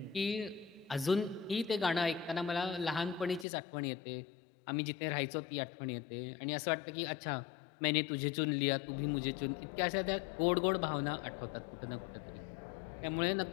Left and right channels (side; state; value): right; drops out; at 3.5 s